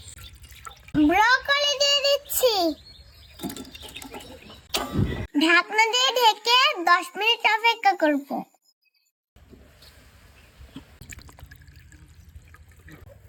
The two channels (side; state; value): both; identical; correlation 1.00